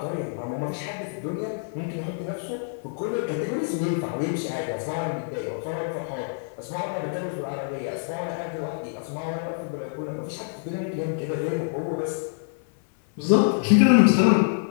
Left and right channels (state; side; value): silent; right; 58 dB below the other